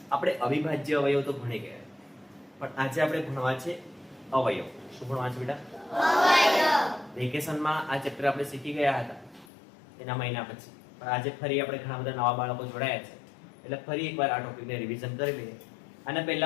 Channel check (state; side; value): drops out; right; at 9.5 s